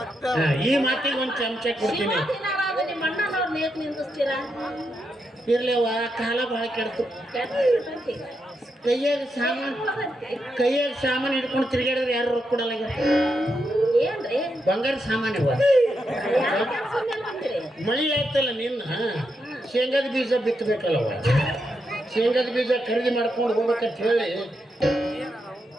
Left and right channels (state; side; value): normal; both; correlation 0.83